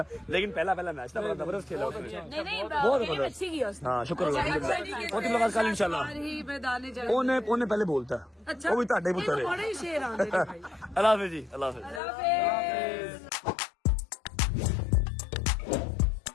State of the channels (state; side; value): drops out; right; at 12.0 s